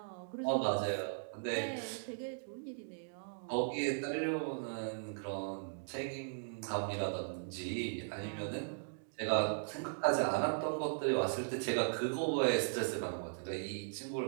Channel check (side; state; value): left; silent; digital silence